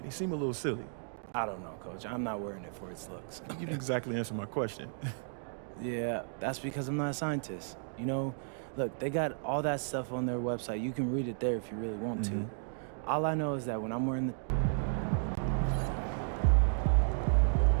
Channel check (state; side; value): silent; left; digital silence